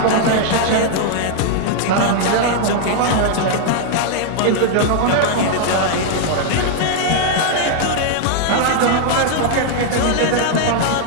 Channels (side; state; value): both; different; correlation 0.00